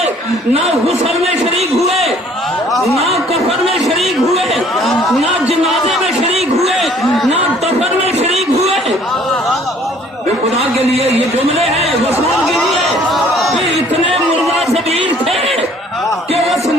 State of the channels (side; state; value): both; normal; correlation 0.57